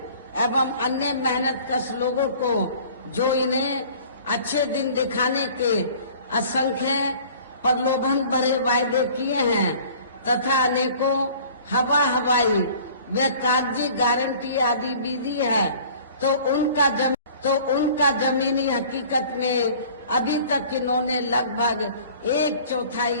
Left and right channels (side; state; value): both; inverted; correlation -0.49